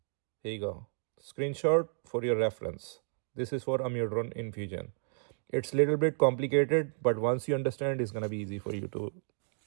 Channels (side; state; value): left; silent; digital silence